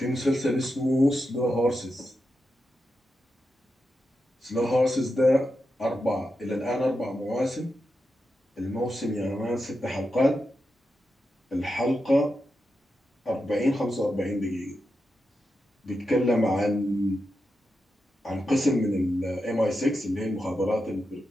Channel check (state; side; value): normal; both; correlation 0.88